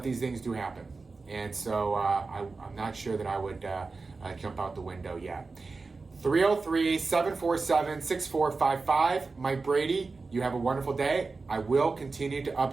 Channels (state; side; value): quieter; left; 4.0 dB